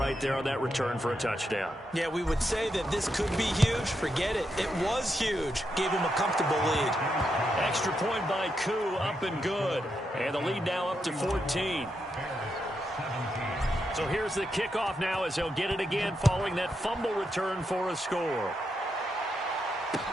there on that return for a touchdown. Yeah, we would say that this could be huge. Forget it. It was huge. Gave him a comfortable lead. Extra point by Koo, up and good. And the lead now up to 14. So here's the kickoff now as they'll get it again following that fumble return for a score.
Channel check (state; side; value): normal; both; correlation 0.83